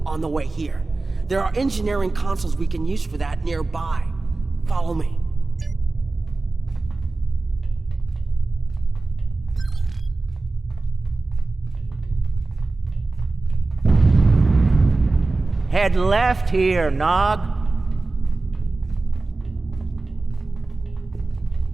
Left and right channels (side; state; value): left; quieter; 3.4 dB